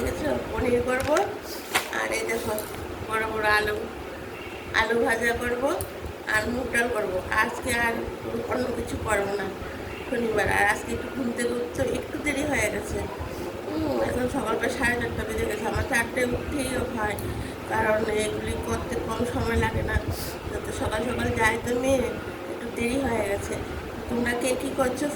আছে? পনির করবো। আর এই দেখো বড় বড় আলু ভাজা করবো আর মুগ ডাল করবো। আজকে আর অন্য কিছু করবো না, শনিবার। আর আজকে একটু ঘুম থেকে উঠতে একটু দেরি হয়ে গেছে। এখন সকালবেলা 4:30 বেজে গেছে। আমার 4টায় উঠতেই হয়, কারণ এগুলি করতে কম সময় লাগে না। তো সকাল সকাল যাই তো মেয়ে, একটু দেরি হয়ে গেছে। তোমরা কে কী করছো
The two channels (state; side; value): identical; both; correlation 1.00